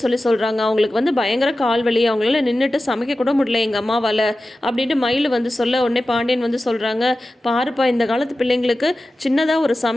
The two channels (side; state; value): both; normal; correlation 0.94